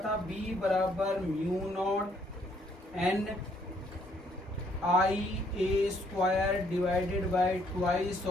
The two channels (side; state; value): both; normal; correlation 0.67